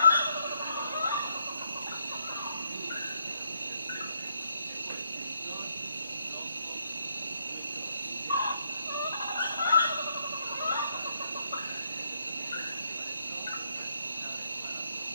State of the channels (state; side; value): inverted; both; correlation -0.74